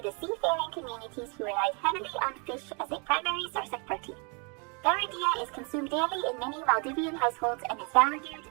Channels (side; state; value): left; quieter; 34.3 dB